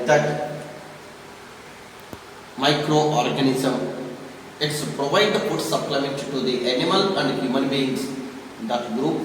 that, microorganism, it's provide the food supplement to the animal and human beings. That group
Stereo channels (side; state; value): both; identical; correlation 1.00